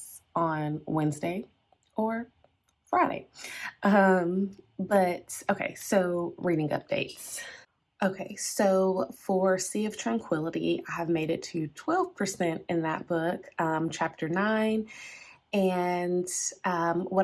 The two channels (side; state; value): both; identical; correlation 1.00